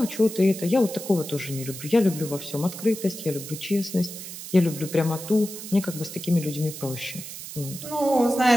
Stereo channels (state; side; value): noise; right; hiss, 11 dB below the sound